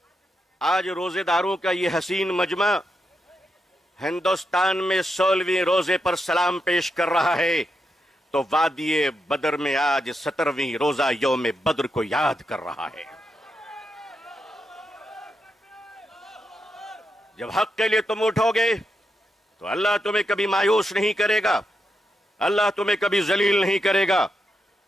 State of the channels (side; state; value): both; normal; correlation 0.84